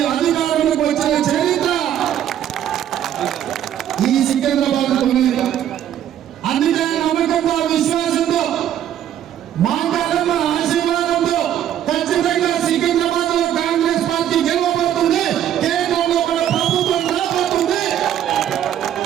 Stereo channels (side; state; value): left; quieter; 10.7 dB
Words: అధికారంలోకి వచ్చిన చరిత్ర ఈ సికింద్రాబాద్. అందుకే నమ్మకంతో, విశ్వాసంతో, మాట్లాడమ్మ ఆశీర్వాదంతో ఖచ్చితంగా సికింద్రాబాద్ లో కాంగ్రెస్ పార్టీ గెలవబోతుంది. కేంద్రంలో మన ప్రభుత్వం రాబోతుంది.